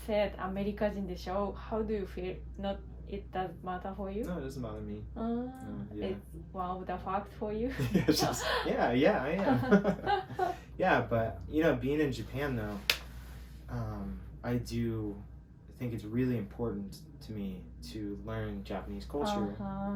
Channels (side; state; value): both; identical; correlation 1.00